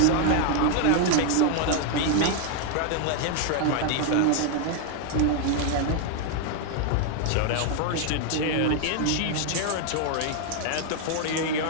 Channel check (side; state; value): both; different; correlation 0.00